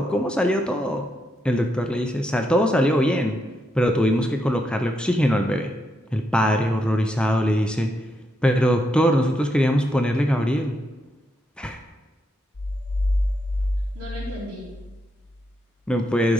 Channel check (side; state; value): both; normal; correlation 0.81